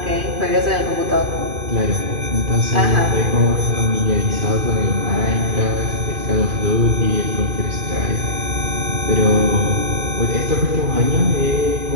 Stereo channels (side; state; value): left; late; 2.5 ms